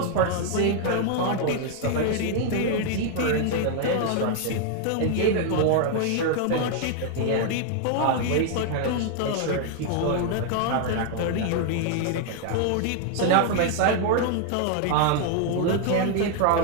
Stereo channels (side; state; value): both; different; correlation 0.00